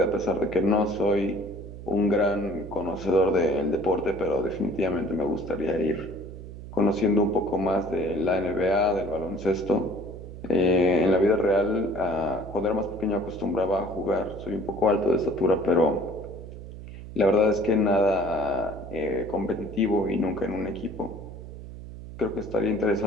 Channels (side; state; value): right; noise; hum, 12 dB below the sound